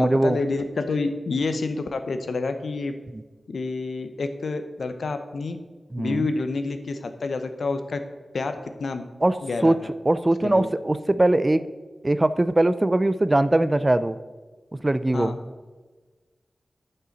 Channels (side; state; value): both; normal; correlation 0.96